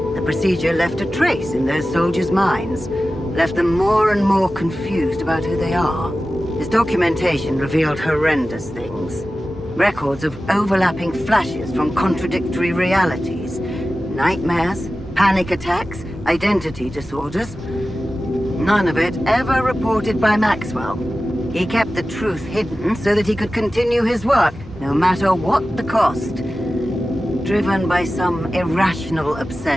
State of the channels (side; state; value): both; normal; correlation 0.95